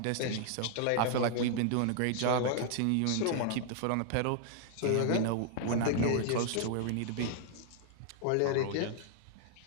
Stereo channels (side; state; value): both; different; correlation 0.00